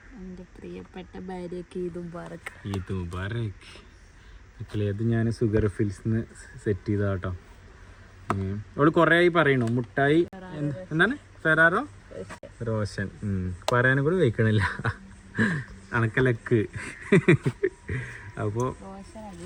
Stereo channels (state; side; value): identical; both; correlation 1.00